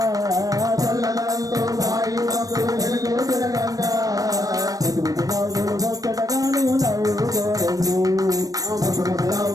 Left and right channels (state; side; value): late; left; 0.18 ms